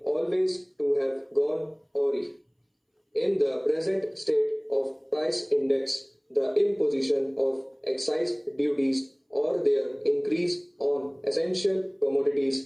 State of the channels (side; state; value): both; identical; correlation 1.00